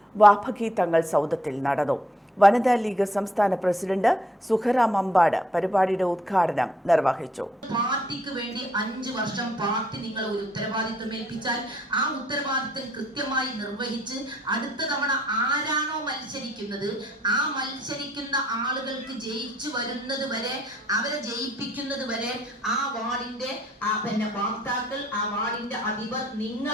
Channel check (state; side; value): normal; both; correlation 0.67